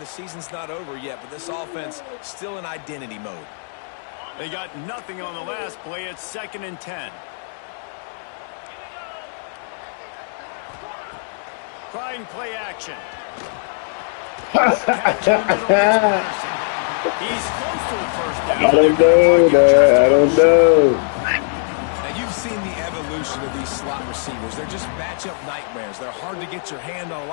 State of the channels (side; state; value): right; silent; digital silence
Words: season's not over yet, but this offense still in identity mode. They got nothing on the last play. It's 2nd and 10. Trying play action. Catch in the middle, it's Patterson. He's close to the 1st down. I don't know that. I don't know. Now, you've seen the evolution of these slot receivers. They're just matchup nightmares. They're hard to get your hand on. A